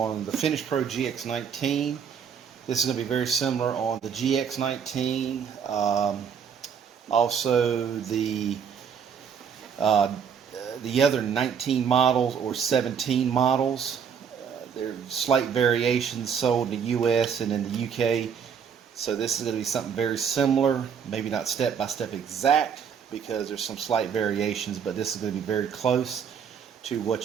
the Finish Pro GX19. This is going to be very similar on the GX19, also uh, the other 19 models or 17 models. There are slight variations sold in the US and in the UK. So this is going to be something very similar, maybe not step by step exact because there's some slight variations, but this is going to be very close to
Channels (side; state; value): left; quieter; 7.3 dB